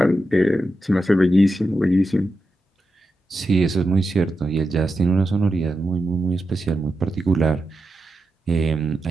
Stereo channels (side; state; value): both; normal; correlation 0.89